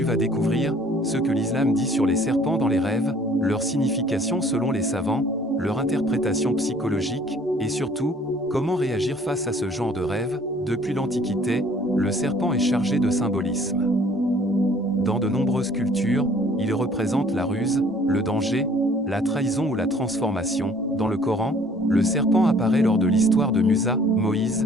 vas découvrir ce que l'islam dit sur les serpents dans les rêves, leur signification selon les savants, leur interprétation psychologique, et surtout, comment réagir face à ce genre de rêve. Depuis l'Antiquité, le serpent est chargé de symbolisme. Dans de nombreuses cultures, il représente la ruse, le danger, la trahison ou la transformation. Dans le Coran, le serpent apparaît lors de l'histoire de Musa,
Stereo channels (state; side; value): normal; both; correlation 0.56